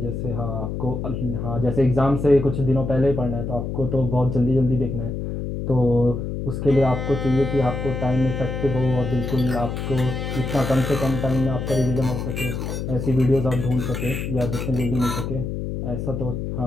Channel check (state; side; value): noise; left; hum, 4 dB below the sound